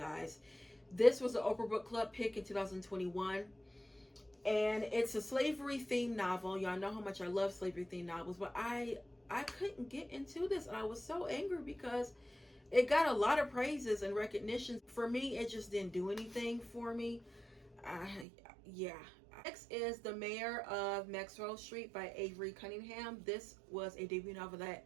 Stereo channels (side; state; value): left; drops out; at 18.2 s